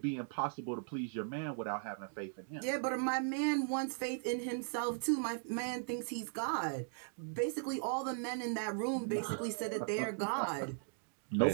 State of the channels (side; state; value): left; silent; digital silence